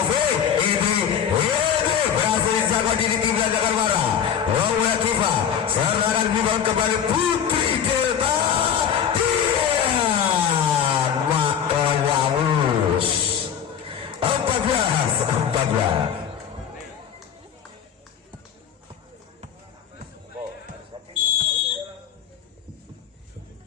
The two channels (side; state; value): right; quieter; 8.4 dB